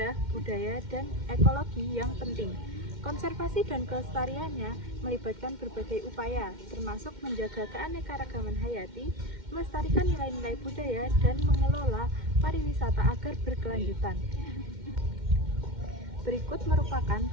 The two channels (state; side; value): late; left; 2.1 ms